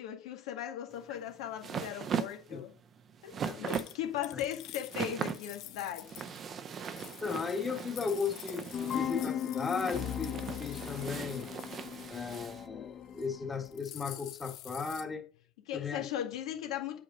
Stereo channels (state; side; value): quieter; right; 3.8 dB